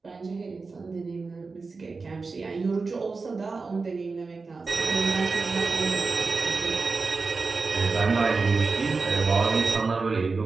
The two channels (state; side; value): quieter; left; 4.2 dB